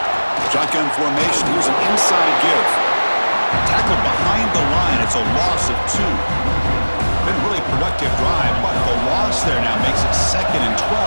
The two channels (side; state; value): both; inverted; correlation -1.00